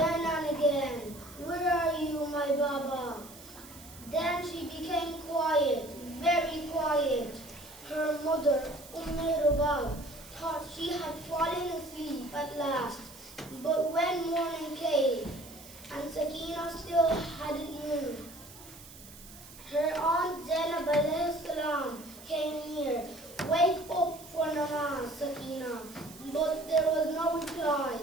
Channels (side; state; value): right; noise; hiss, 18 dB below the sound